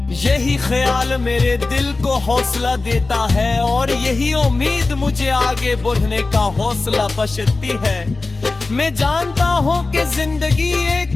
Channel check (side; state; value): right; quieter; 3.5 dB